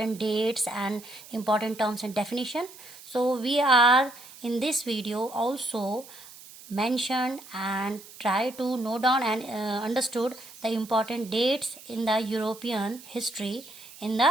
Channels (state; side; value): noise; right; hiss, 18 dB below the sound